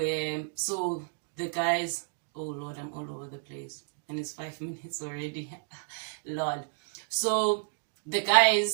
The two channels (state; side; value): silent; left; digital silence